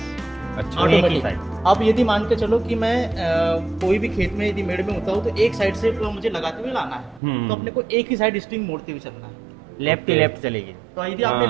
अच्छा। एक ही ऑटोमेटिक। साइड। अब यदि मान के चलो कि मैं कोई भी खेत में यदि मेड़ में होता हूँ तो एक साइड से मुझे लगाते हुए लाना है, तो अपने को एक ही साइड स्ट्रिंग मोड़ते हुए चलना है। लेफ्ट ही लेफ्ट चलेगी। तो यदि आपने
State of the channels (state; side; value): drops out; left; at 7.2 s